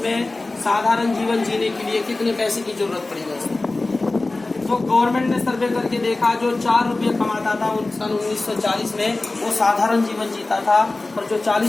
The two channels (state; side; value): quieter; right; 3.1 dB